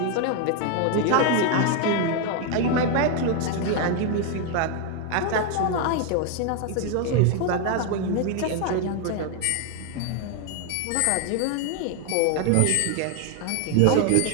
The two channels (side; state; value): both; different; correlation 0.01